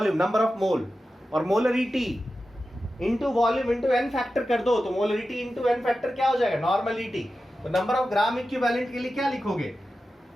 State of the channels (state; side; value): normal; both; correlation 0.93